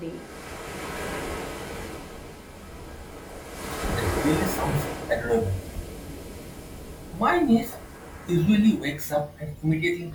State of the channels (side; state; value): both; identical; correlation 1.00